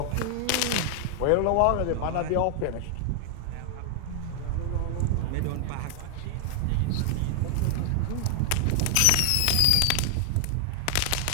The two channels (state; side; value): different; both; correlation 0.00